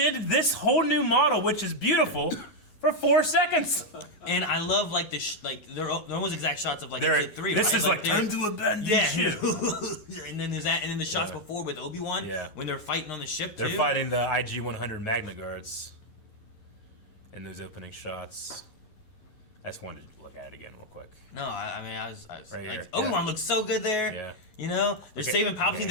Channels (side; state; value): right; late; 11 ms